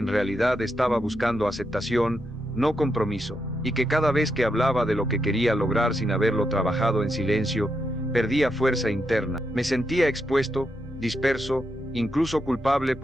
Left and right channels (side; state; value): both; normal; correlation 0.83